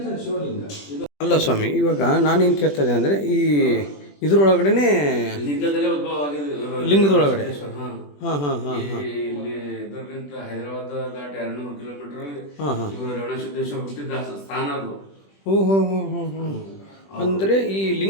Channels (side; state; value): right; late; 20 ms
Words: ತಾನೆ ಶಿವಲಿಂಗ. ಅಲ್ಲ ಸ್ವಾಮಿ, ಇವಾಗ ನಾನೇನು ಕೇಳ್ತಾ ಇದ್ದೆ ಅಂದರೆ ಈ ಇದರೊಳಗಡೆ ಲಿಂಗದಲ್ಲೇ ಉದ್ಭವ ಆಗಿದೆ, ಲಿಂಗದೊಳಗಡೆ. ಹಾಂ ಹಾಂ ಹಾಂ ಹಾಂ ಹಾಂ ಇಲ್ಲಿ ಇದರಿಂದ ಹೈದರಾಬಾದ್ ದಾಟಿ 200 ಕಿಲೋಮೀಟರ್ ಹಾಂ ಹಾಂ ಇವರು ರೇವಣಸಿದ್ದೇಶ್ವರ ಹುಟ್ಟಿದ ಸ್ಥಾನ ಅದು. ಓಹೋ ಹೋ ಹೋ ಹೋ. ಅಂದರೆ ಈ